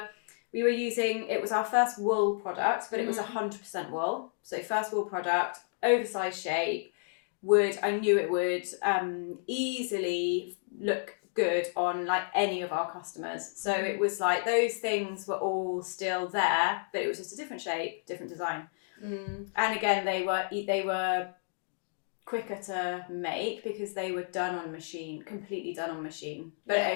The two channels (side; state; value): right; silent; digital silence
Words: using, it was our first wool product, but it was 100% wool. So first wool product, oversized shape. I knew it would easily look good on like any of our customers. So it was like those things were all still there, but it was just a different shape, different design. And again, they were quicker to make because they were done on machine, completely done on machine.